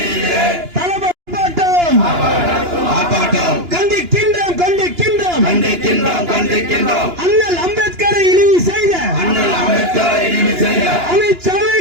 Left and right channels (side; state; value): left; late; 2.9 ms